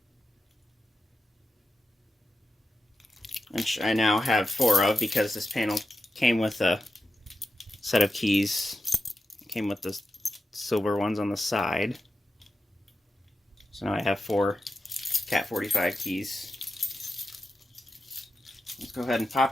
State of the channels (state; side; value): normal; both; correlation 0.90